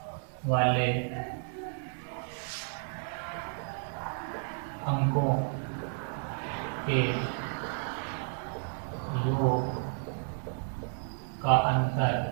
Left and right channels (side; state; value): left; silent; 56 dB below the other